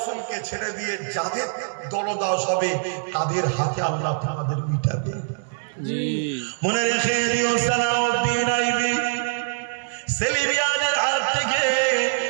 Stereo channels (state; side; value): silent; left; 63 dB below the other